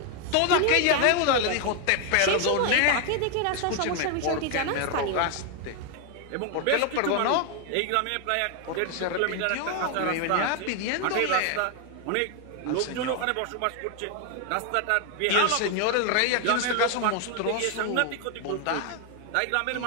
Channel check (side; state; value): both; different; correlation 0.01